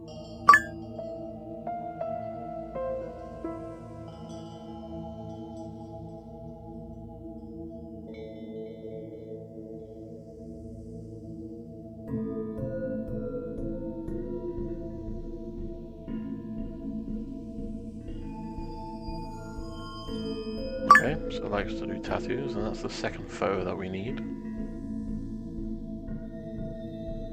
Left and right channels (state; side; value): identical; both; correlation 1.00